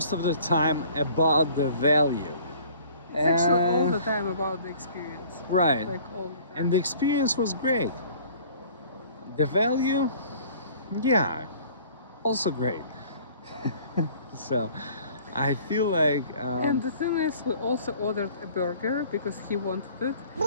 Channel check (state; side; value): inverted; both; correlation -0.52